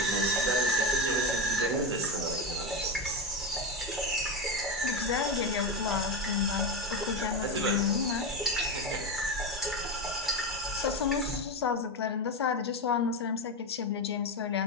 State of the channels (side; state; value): both; normal; correlation 0.15